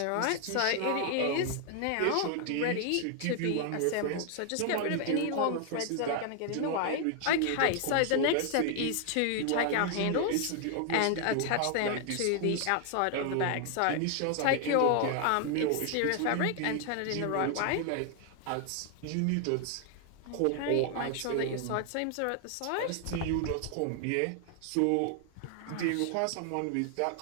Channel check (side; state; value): both; different; correlation 0.00